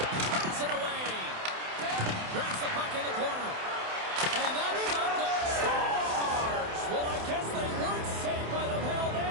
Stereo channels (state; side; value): late; left; 28 ms